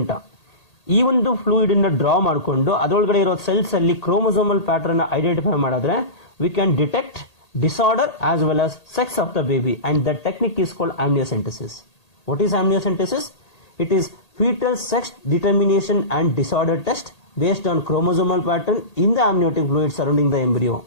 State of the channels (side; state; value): right; late; 1.8 ms